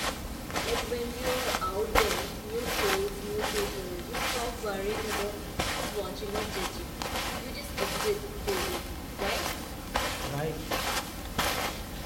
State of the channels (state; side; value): identical; both; correlation 1.00